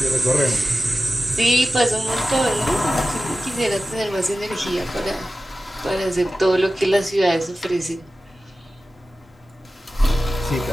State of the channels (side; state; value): both; normal; correlation 0.94